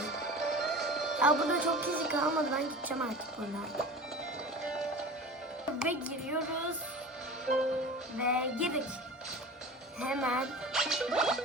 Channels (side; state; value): both; normal; correlation 0.35